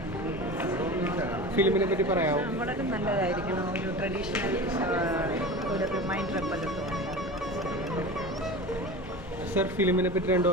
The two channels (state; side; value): normal; both; correlation 0.32